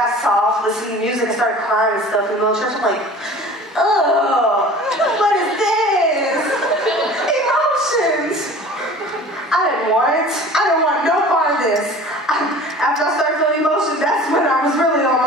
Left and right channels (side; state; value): both; normal; correlation 0.43